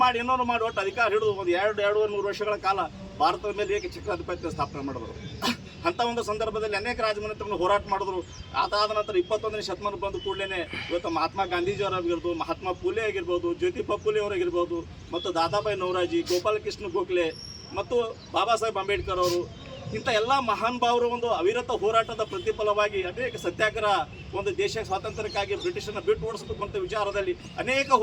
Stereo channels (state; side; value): identical; both; correlation 1.00